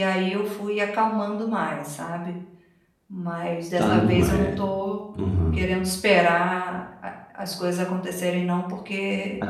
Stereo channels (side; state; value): both; identical; correlation 1.00